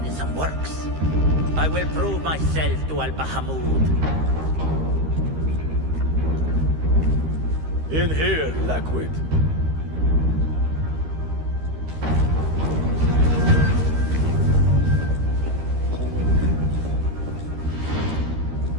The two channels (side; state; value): left; late; 13 ms